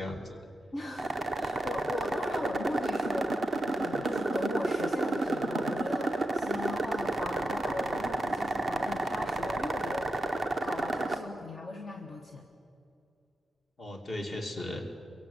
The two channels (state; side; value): normal; both; correlation 0.87